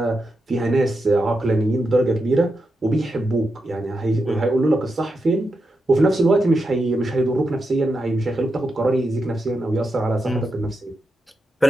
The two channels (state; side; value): normal; both; correlation 0.87